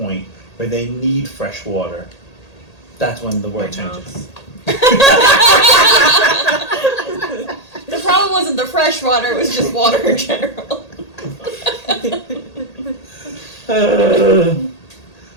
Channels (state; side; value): late; right; 1.8 ms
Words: where they need fresh water, that's when the world changes. The problem wasn't the fresh water, it was just water in general.